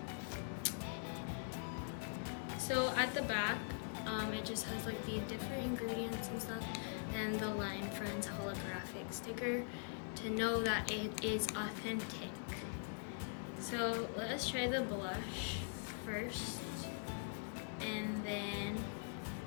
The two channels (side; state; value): right; silent; digital silence